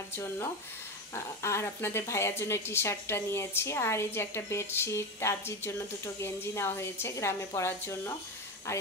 জন্য, আর আপনাদের ভাইয়ার জন্য টি শার্টটা নিয়েছি। আর এই যে একটা বেডশিট, তাজির জন্য দুটো গেঞ্জি নেওয়া হয়েছে গ্রামে পরার জন্য। আর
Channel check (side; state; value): both; normal; correlation 0.19